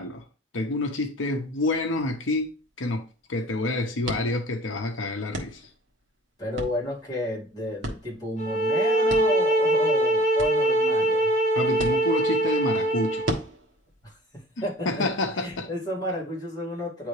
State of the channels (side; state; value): both; normal; correlation 0.46